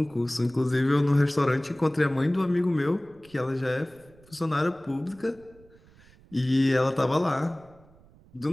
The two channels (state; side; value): noise; right; rumble, 27 dB below the sound